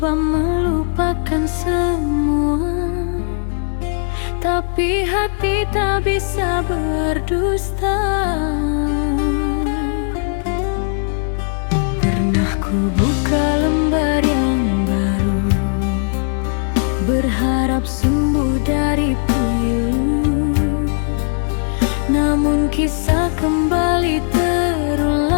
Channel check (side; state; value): right; silent; 61 dB below the other